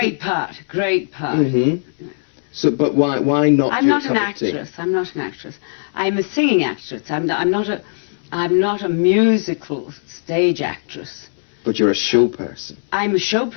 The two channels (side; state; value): right; silent; digital silence